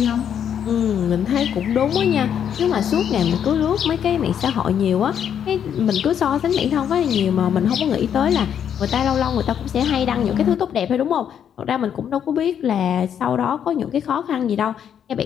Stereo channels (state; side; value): quieter; right; 8.8 dB